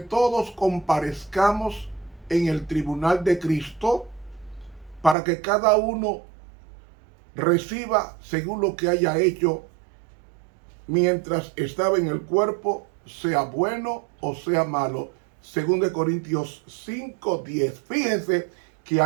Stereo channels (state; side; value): drops out; left; at 5.2 s